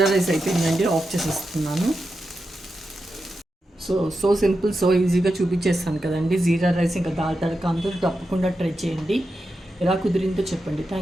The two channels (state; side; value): normal; both; correlation 0.89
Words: రైస్ అయిపోయిందండి. ఆఫ్ చేసేస్తున్నాను. సో సింపుల్, సో ఈజీగా చూపించేస్తాను కదండి. జీరా రైస్ ఇంకా దాల్ తడక అందరూ తప్పకుండా ట్రై చేయండి. ఎలా కుదిరిందో చెప్పండి.